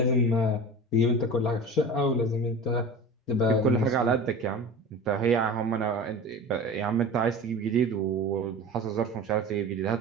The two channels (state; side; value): normal; both; correlation 0.34